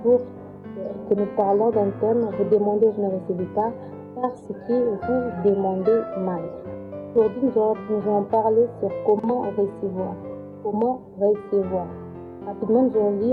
jour que nous parlons d'un thème. Vous demandez, je ne recevez pas, parce que vous demandez mal. Aujourd'hui, nous allons parler sur comment recevoir. Comment recevoir. Rapidement, nous allons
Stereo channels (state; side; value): identical; both; correlation 1.00